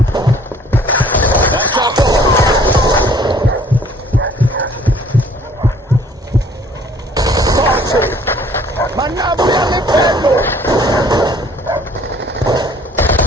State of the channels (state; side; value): normal; both; correlation 0.56